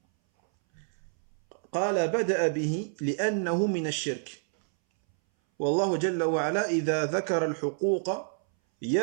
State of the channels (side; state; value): left; silent; 59 dB below the other